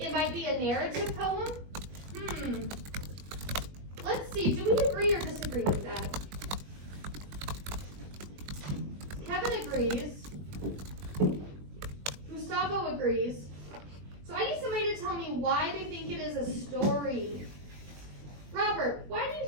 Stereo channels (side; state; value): left; late; 21 ms